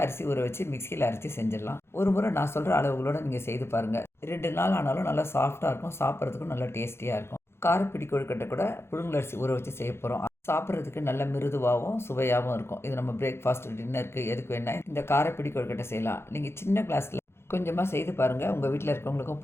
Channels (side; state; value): right; late; 0.12 ms